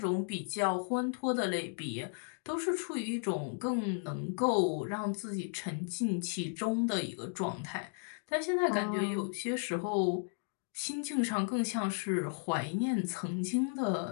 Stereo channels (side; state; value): right; silent; 55 dB below the other